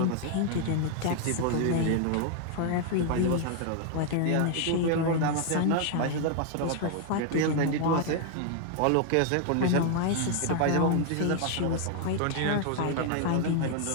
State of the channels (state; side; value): different; both; correlation 0.00